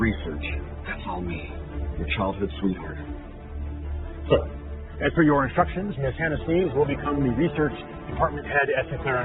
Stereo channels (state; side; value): identical; both; correlation 1.00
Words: that's all me, your childhood sweetheart. So, as per your instructions, Miss Hannah Sneeves will become the research department head at